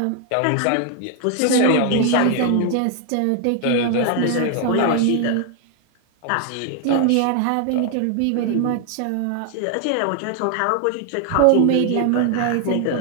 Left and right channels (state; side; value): different; both; correlation 0.00